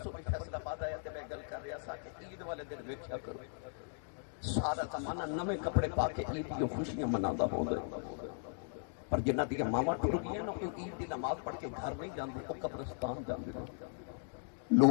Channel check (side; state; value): right; silent; digital silence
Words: بھی فیصلہ آباد آیا تے میں گل کر رہا سا کہ عید والے دن ویکھیا کرو سارا زمانہ نویں کپڑے پا کے عید کی خوشیاں مناتا ہوندا ہے، پر جنہ دی ماواں ٹر گئی نا کوئی عید دی نماز پڑھ کے گھر نہیں جاندے، او قبرستان جاندے نے۔